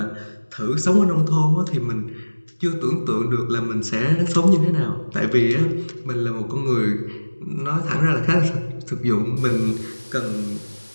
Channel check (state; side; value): inverted; both; correlation -1.00